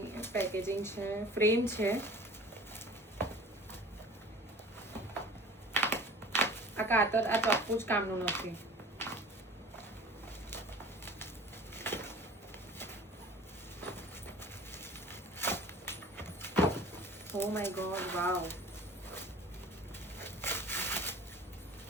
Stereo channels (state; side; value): normal; both; correlation 0.44